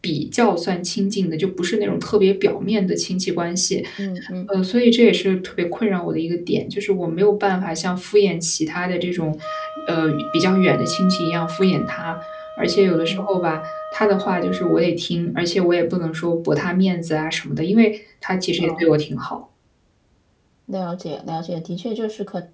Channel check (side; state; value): both; identical; correlation 1.00